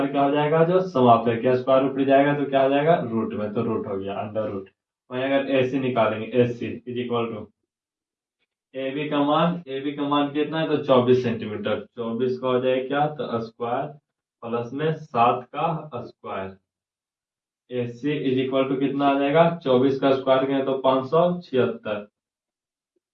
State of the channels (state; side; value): identical; both; correlation 1.00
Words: क्या हो जाएगा, जो समाप्त है, क्या स्क्वायर रूट जाएगा तो क्या हो जाएगा, रूट में, तो रूट हो गया अंडर रूट। वहीं अगर ए सी निकालेंगे, A C is equal to A B का मान, ए बी का मान कितना है, तो 24 सेंटीमीटर। 24 का हो जाएगा क्या, तो स्क्वायर प्लस में 7 का square. A C is equal to कितना आ जाएगा, 24 का स्क्वायर करें तो 576,